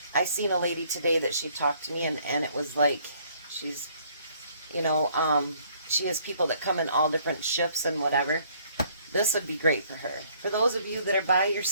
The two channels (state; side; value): inverted; both; correlation -0.63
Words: I seen a lady today that she talked to me, and it was like, she's, you know, she has people that come in all different shifts and whatever. This would be great for her. For those of you that are by